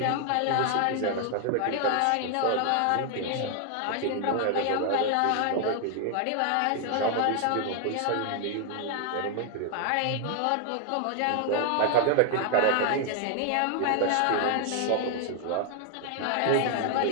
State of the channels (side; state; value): both; different; correlation 0.00